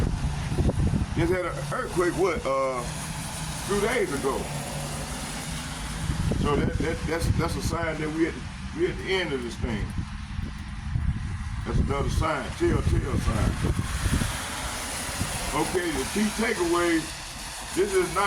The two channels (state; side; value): identical; both; correlation 1.00